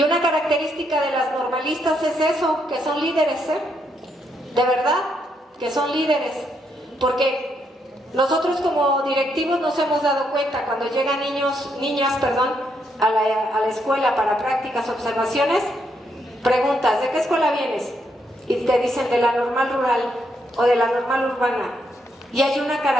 una característica de las normalistas es eso, que son líderes, de verdad, que son líderes, porque nosotros como directivos nos hemos dado cuenta cuando llegan niñas, a la escuela para prácticas, observaciones, preguntas, ¿de qué escuela vienes? Y te dicen de la normal rural o de la normal urbana. Y hay una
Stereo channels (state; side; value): normal; both; correlation 0.77